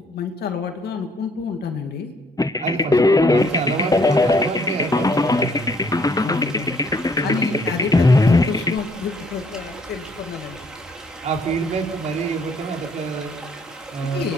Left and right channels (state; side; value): normal; both; correlation 0.66